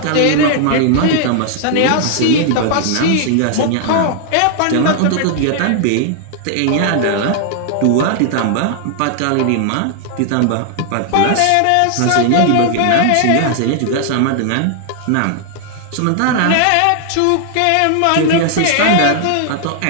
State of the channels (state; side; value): different; both; correlation 0.00